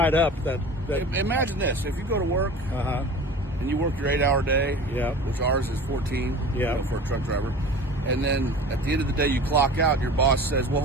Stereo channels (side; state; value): both; normal; correlation 0.38